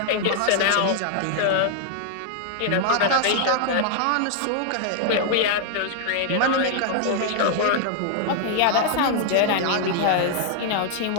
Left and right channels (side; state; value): both; different; correlation -0.01